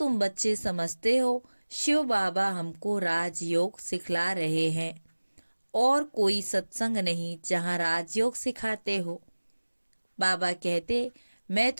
बच्चे समझते हो शिव बाबा हमको राजयोग सिखला रहे हैं, और कोई सत्संग नहीं जहाँ राजयोग सिखाते हो। बाबा कहते मैं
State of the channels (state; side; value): inverted; both; correlation -1.00